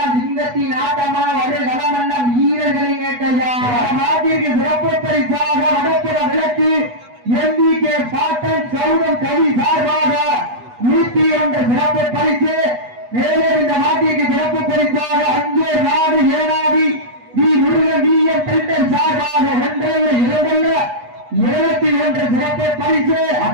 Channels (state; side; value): late; left; 8.2 ms